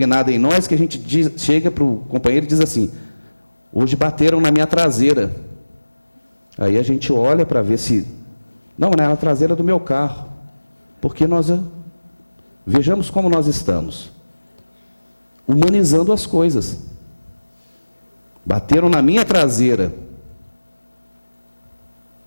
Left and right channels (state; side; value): inverted; both; correlation -1.00